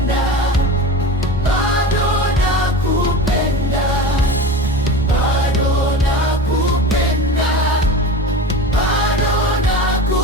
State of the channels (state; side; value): normal; both; correlation 0.32